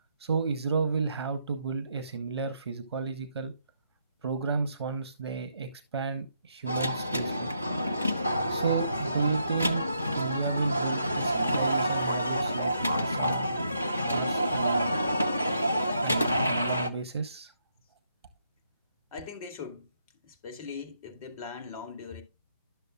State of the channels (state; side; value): inverted; both; correlation -0.76